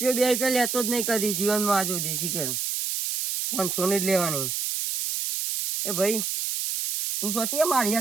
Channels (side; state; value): right; noise; hiss, 2 dB below the sound